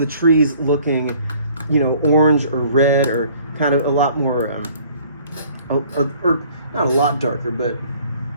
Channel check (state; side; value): inverted; both; correlation -0.56